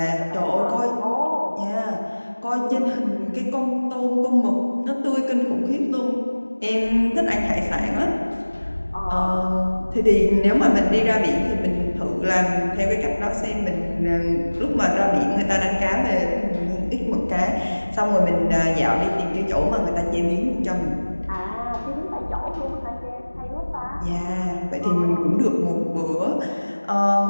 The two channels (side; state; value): both; inverted; correlation -1.00